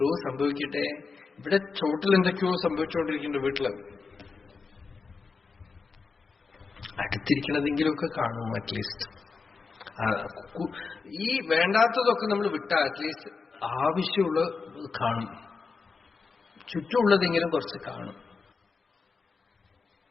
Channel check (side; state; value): right; quieter; 4.7 dB